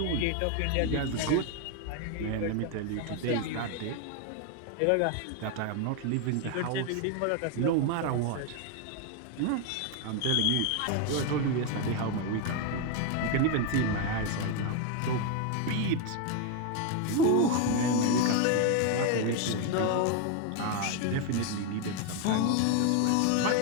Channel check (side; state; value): both; different; correlation 0.01